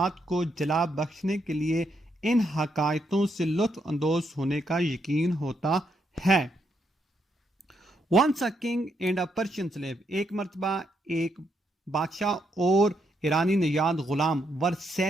کو جلا بخشنے کے لیے ان حکایتوں سے لطف اندوز ہونے کا یقین ہوتا ہے. Once a king and a Persian slave، ایک مرتبہ ایک بادشاہ اور ایرانی نژاد غلام were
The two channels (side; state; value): both; normal; correlation 0.77